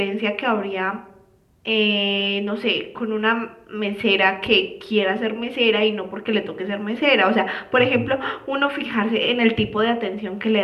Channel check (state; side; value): identical; both; correlation 1.00